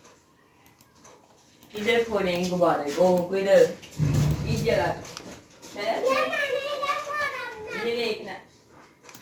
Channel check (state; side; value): identical; both; correlation 1.00